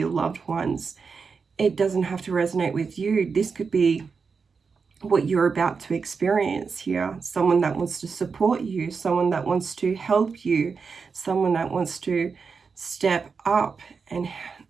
loved ones. It doesn't have to resonate with you. This could be what you're about to experience here. Someone that wants to support you, someone that wants to help you, someone that wants to step up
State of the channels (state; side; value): quieter; left; 5.2 dB